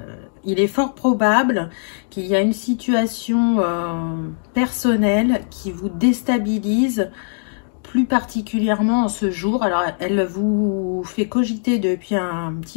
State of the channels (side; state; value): right; silent; digital silence